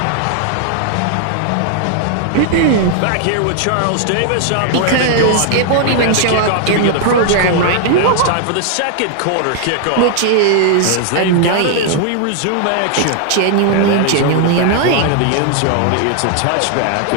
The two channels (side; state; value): both; different; correlation 0.00